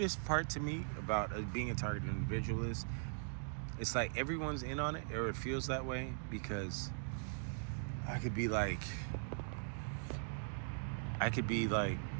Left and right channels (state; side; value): silent; left; digital silence